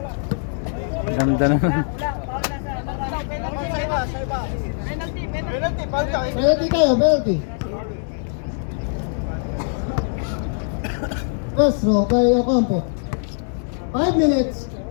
Ganda naman. Penalty tayo, penalty. First row by Ocampo. 5 minutes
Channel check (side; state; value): right; silent; digital silence